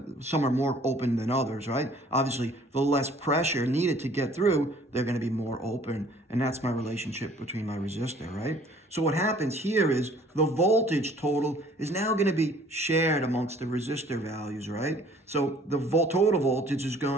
Some are more open than others, right? Obviously, the less pressure needed to get through, they're going to be more open. And that's my relationship between my resistor, right? So what happens here is the voltage total is now going to be shared amongst the resistor values, right? So the total voltage is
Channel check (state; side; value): normal; both; correlation 0.55